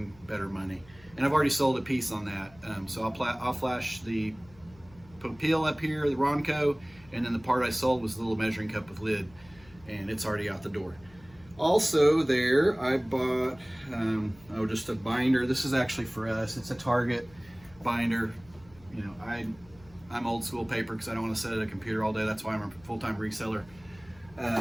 better money. And I've already sold a piece on that. So I'll flash the Popeil up here, the Ronco, and then the part I sold was the little measuring cup with lid, and it's already out the door. Also there, I bought just a binder. This is actually for us. It's a Target binder. You know, I'm old school paper because I don't want to sit at a computer all day. That's why I'm a full-time reseller.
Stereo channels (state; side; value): noise; left; hum, 25 dB below the sound